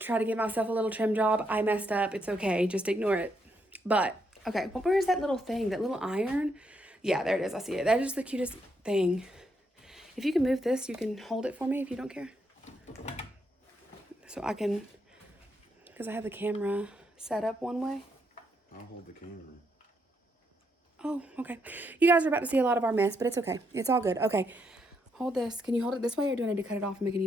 to give myself a little trim job. I messed up. It's okay. Just ignore it. But, okay. Well, where is that little thing? That little iron? Yeah, there it is. I see it. That is the cutest thing. If you can move this, you can hold it for me if you don't care. So I can, because I have the camera set up one way. I'll hold the camera. Oh, okay. You guys are about to see a lot of our mess, but it's okay. It's all good. Okay. Hold this. Can you hold it this way, or do I need to cut it off and make a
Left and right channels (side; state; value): both; normal; correlation 0.78